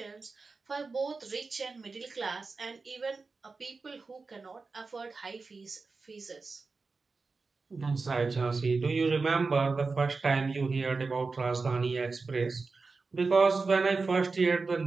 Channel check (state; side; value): quieter; left; 4.2 dB